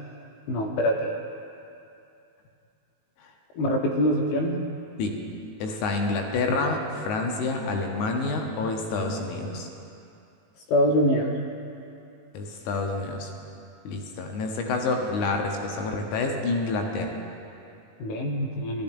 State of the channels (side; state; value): right; late; 19 ms